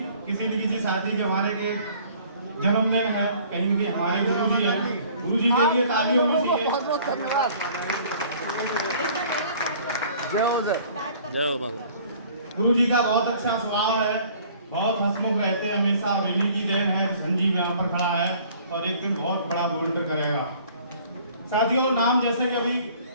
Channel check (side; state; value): both; inverted; correlation -0.53